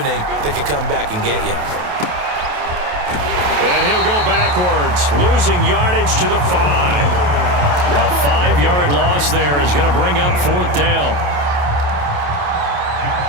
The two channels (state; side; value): late; left; 28 ms